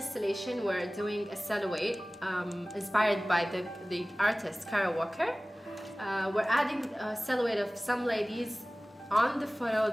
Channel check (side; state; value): both; normal; correlation 0.98